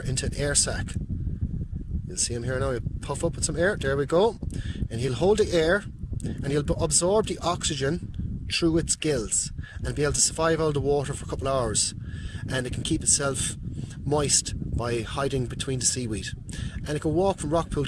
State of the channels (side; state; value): both; identical; correlation 1.00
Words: into an air sac. You'll see him here now. He'll puff up with some air. There we go. And he'll hold the air and he'll absorb the oxygen through its gills and be able to survive out of the water for a couple of hours. And it can keep itself moist by hiding between the seaweed. And it can walk from rock pool